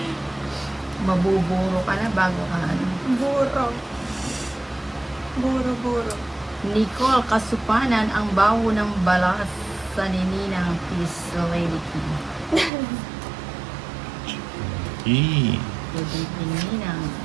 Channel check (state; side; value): drops out; left; at 12.7 s